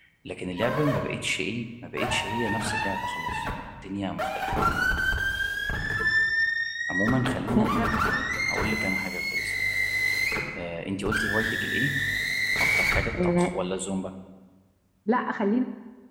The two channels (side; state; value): both; identical; correlation 1.00